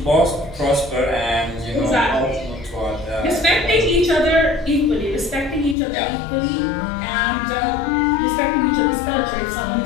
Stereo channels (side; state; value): right; drops out; at 5.8 s